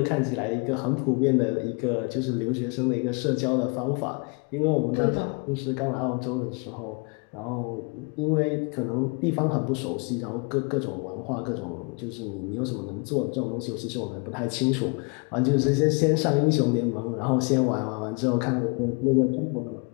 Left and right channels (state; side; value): quieter; right; 33.5 dB